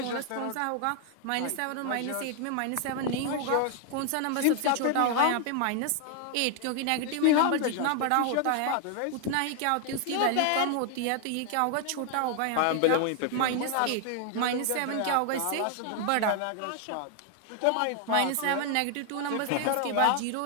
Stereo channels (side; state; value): both; different; correlation 0.00